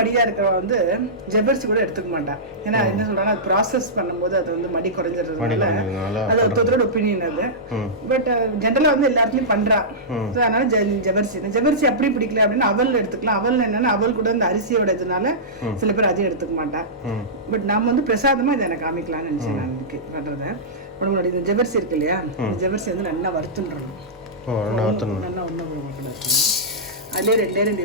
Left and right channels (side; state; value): both; normal; correlation -0.16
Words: இருக்கிறவ வந்து ஜவ்வரிசி கூட எடுத்துக்க மாட்டான். ஏன்னா என்ன சொல்றாங்க, அது ப்ராசஸ் பண்ணும்போது அது வந்து மடி குறைஞ்சிடுறதுனால அது ஒருத்தரோட ஒப்பீனியன் அது. பட் ஜென்ரலா வந்து எல்லாத்துலயும் பண்றா. அதனால ஜவ்வரிசி அப்படி பிடிக்கல அப்படின்னா அவல் எடுத்துக்கலாம். அவல் என்னன்னா அவல் கூட இந்த அரிசியோட இதனால சில பேர் அதையும் எடுத்துக்க மாட்டா. பட் நாம வந்து பிரசாதமா இதை எனக்கு காமிக்கலாம்னு நினைச்சேன் நான் இன்னைக்கு பண்றத. உடம்புடைய இந்த ஜவ்வரிசி இருக்கு இல்லையா, இந்த ஜவ்வரிசி வந்து நல்லா வறுத்துன்றணும். நல்லா ஒன்றும் அதுலேயே 2